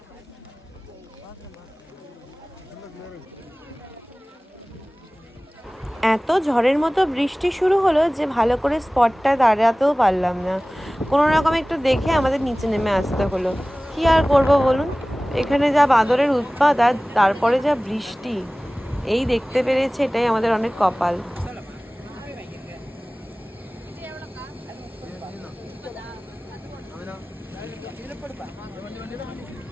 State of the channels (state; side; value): normal; both; correlation 0.98